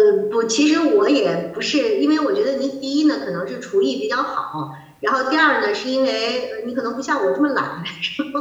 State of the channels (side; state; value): both; identical; correlation 1.00